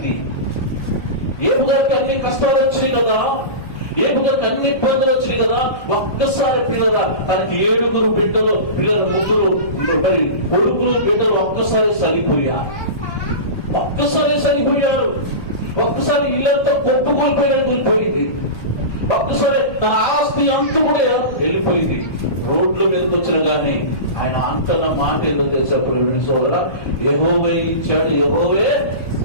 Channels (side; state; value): right; late; 1.4 ms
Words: ఏబు గారికి అన్ని కష్టాలు వచ్చినాయి కదా, ఏబు గారికి అన్ని ఇబ్బందులు వచ్చినాయి కదా. ఒక్కసారి పిల్లల తనకి 7 బిడ్డలు, పిల్లల 3 మరి కొడుకులు బిడ్డలు ఒక్కసారి చనిపోయారు. ఒక్కసారి ఇల్లంతా కూలిపోయింది. ఒక్కసారి తన ఆస్తి అంతా కూడా వెళ్ళిపోయింది. రోడ్ల మీదకి వచ్చిన కానీ ఆయన అంతన్న మాట ఏదో తెలుసా సోదరా, యెహోవా ఇచ్చాడు, యెహోవే